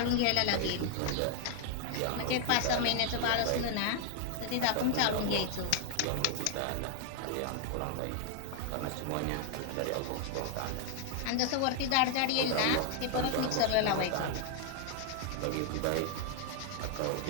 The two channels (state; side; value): different; both; correlation 0.00